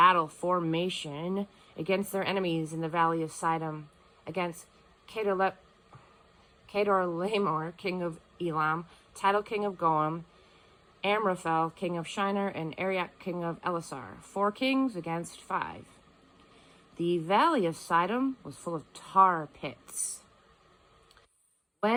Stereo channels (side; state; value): both; identical; correlation 1.00